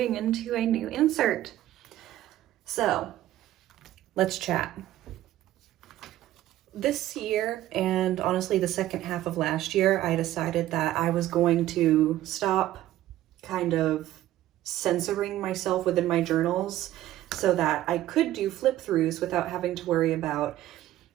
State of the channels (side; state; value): left; quieter; 14.1 dB